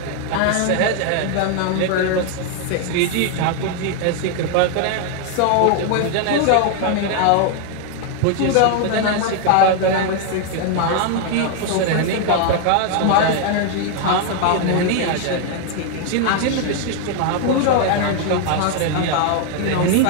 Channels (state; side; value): different; both; correlation 0.00